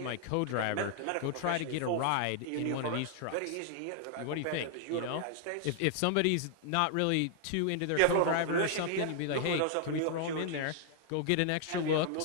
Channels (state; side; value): different; both; correlation 0.00